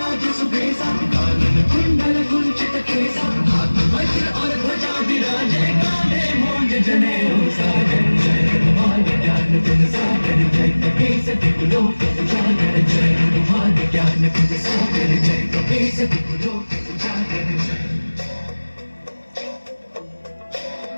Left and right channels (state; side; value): inverted; both; correlation -1.00